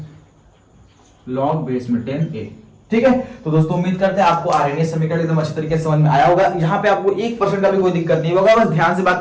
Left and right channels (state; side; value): identical; both; correlation 1.00